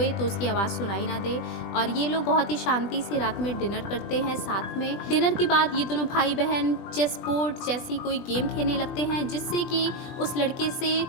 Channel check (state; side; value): late; right; 20 ms